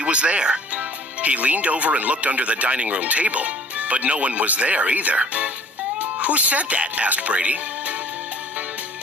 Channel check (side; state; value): both; normal; correlation 0.50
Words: was there. He leaned over and looked under the dining room table, but no one was there either. Who said that? Asked Brady.